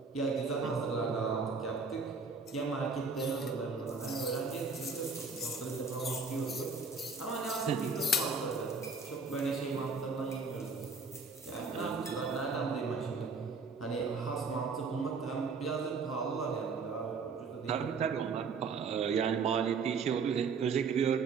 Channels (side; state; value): left; quieter; 4.5 dB